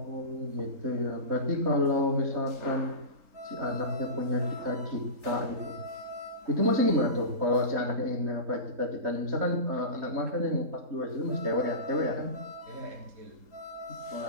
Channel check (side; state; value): left; late; 3.8 ms